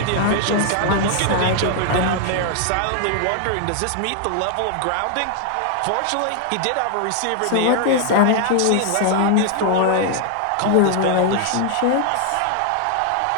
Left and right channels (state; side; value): different; both; correlation 0.00